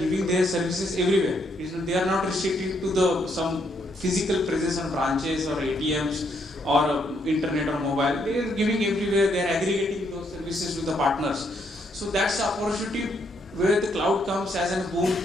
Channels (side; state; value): both; normal; correlation 0.73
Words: their services everywhere. They are not restricted to some physical presence on branches or ATMs or internet or mobile. They are giving everywhere. They are aggregating those services to the partners. So that's the opportunity where the cloud comes as a boom.